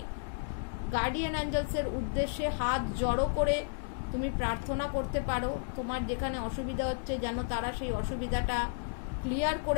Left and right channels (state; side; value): silent; right; 56 dB below the other